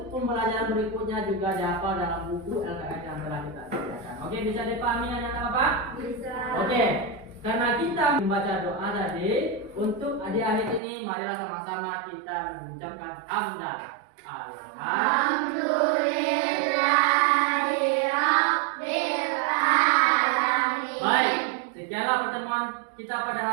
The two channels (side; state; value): left; drops out; at 10.8 s